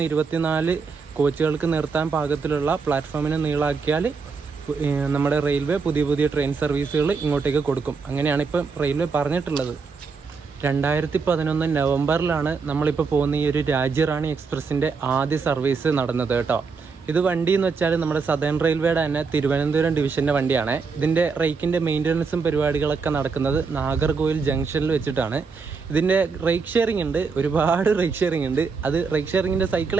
24 കോച്ചുകൾക്ക് നിർത്താൻ പാകത്തിലുള്ള പ്ലാറ്റ്ഫോമിനെ നീളാക്കിയാൽ നമ്മുടെ റെയിൽവേ പുതിയ ട്രെയിൻ സർവീസുകൾ ഇങ്ങോട്ടേക്ക് കൊടുക്കും. അങ്ങനെയാണ് ഇപ്പം റെയിൽവേ പറഞ്ഞിട്ടുള്ളത്. 2011 നവംബറിലാണ് നമ്മളിപ്പോൾ പോകുന്ന ഈ ഒരു രാജ്യറാണി എക്സ്പ്രസിൻ്റെ ആദ്യ സർവീസ് നടന്നത് കേട്ടോ. ഇത് വണ്ടി എന്ന് വെച്ചാൽ നമ്മുടെ സദേൺ റെയിൽവേയുടെ തന്നെ തിരുവനന്തപുരം ഡിവിഷൻ്റെ വണ്ടിയാണ്. ഇതിൻ്റെ റേക്കിൻ്റെ മെയിൻ്റനൻസും പരിപാടികളൊക്കെ നടക്കുന്നത് നാഗർകോവിൽ ജംഗ്ഷനിൽ വെച്ചിട്ടാണ്. ഇതിൻ്റെ റേക്ക് ഷെയറിംഗ് ഉണ്ട്, ഒരുപാട് റേക്ക് ഷെയറിംഗ് ഉണ്ട്. അത് റേക്ക് ഷെയറിങ്ങിൻ്റെ സൈക്കിൾ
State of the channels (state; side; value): quieter; left; 5.0 dB